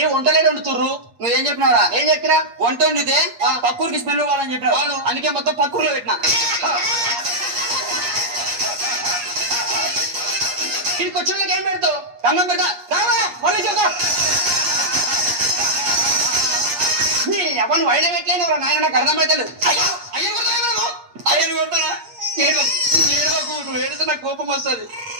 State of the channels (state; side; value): late; left; 8.5 ms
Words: వంటలేదు వండుతుర్రు. నువ్వేం చెప్పినావురా? ఏం చెప్పినా? వంట వండితే పక్కూరికి స్మెల్ పోవాలని చెప్పినావు. అందుకే మొత్తం పక్కూరులో పెట్టినా. ఇంటికి వచ్చిన ఏం పెడతావు? దండం పెడతా. ఎవరు వైన పెట్టలేదు నాయన. నాకు అర్థమైతలేదు. అయ్యను కొడతానా? నువ్వు ఏడితే నాకు కోపం వస్తుంది.